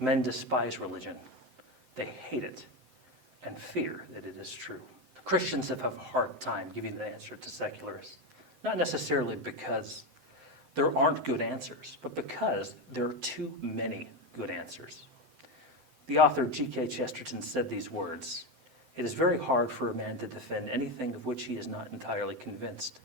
despise religion. They hate it and fear that it is true." Christians have a hard time giving an answer to secularists, not necessarily because there aren't good answers, but because there are too many good answers. The author G.K. Chesterton said these words: "It is very hard for a man to defend anything of which he is not entirely convinced.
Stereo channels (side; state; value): left; late; 7.8 ms